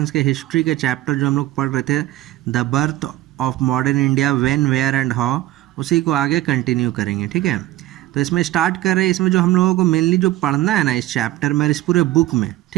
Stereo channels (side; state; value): left; quieter; 15.8 dB